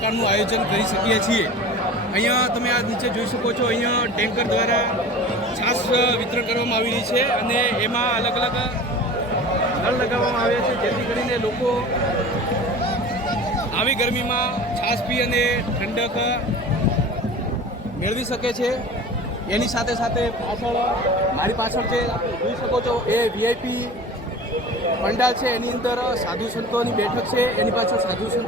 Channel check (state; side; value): normal; both; correlation 0.38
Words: આયોજન કરી શકીએ છીએ। અહીંયા તમે આ નીચે જોઈ શકો છો, અહીંયા ટેન્કર દ્વારા છાશ વિતરણ કરવામાં આવી રહી છે અને એમાં અલગ અલગ નળ લગાવવામાં આવ્યા છે, જેથી કરીને લોકો આવી ગરમીમાં છાશ પી અને ઠંડક મેળવી શકે છે। એની સાથે સાથે મારી પાછળ જે જોઈ શકો છો એ VIP પંડાલ છે, એની અંદર સાધુ સંતોની બેઠક છે, એની પાછળ સાધુ